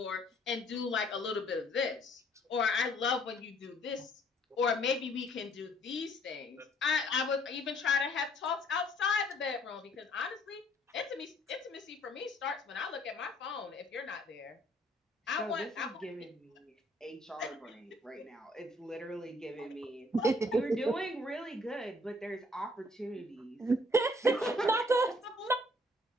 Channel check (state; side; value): normal; both; correlation 0.62